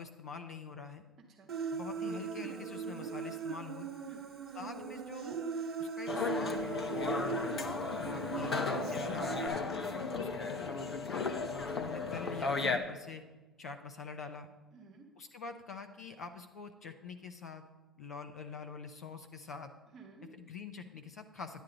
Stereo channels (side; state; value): both; normal; correlation 0.37